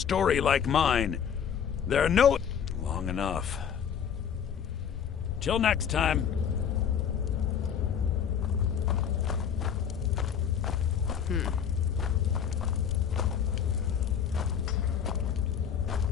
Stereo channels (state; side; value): quieter; right; 8.0 dB